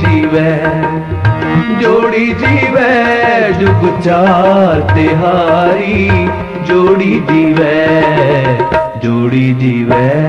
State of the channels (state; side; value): identical; both; correlation 1.00